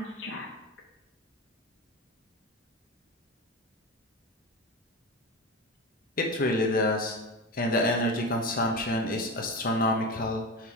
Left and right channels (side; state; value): both; normal; correlation 0.24